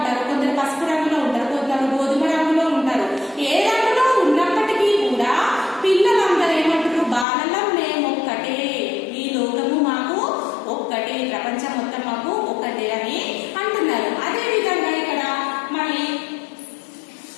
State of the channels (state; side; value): drops out; right; at 7.2 s